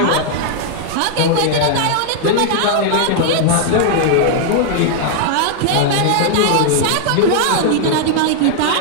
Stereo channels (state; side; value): different; both; correlation -0.01